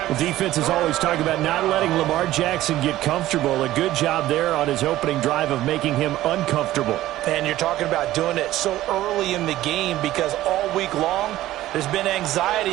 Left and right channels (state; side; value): quieter; left; 15.0 dB